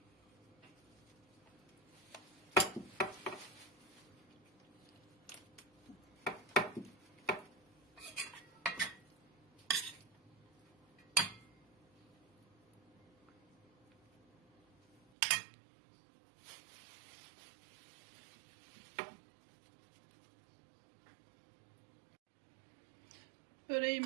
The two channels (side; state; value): left; drops out; at 15.0 s